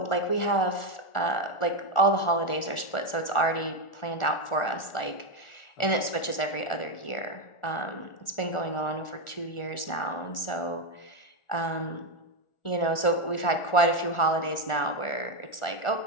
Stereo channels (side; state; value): right; late; 1.4 ms